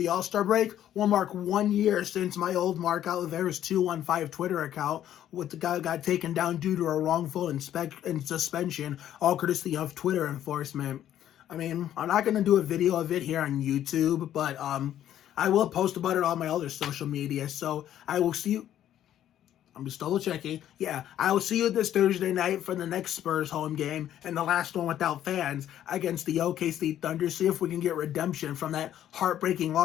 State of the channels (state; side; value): quieter; right; 11.4 dB